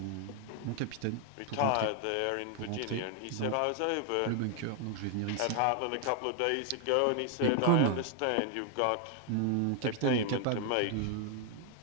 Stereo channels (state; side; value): different; both; correlation 0.00